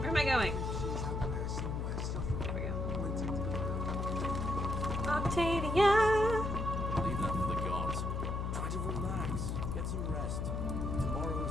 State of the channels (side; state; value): left; noise; hum, 1 dB below the sound